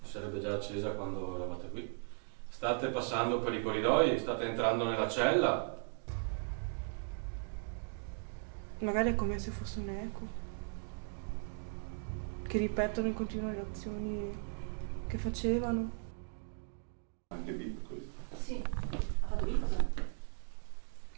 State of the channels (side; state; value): left; silent; 53 dB below the other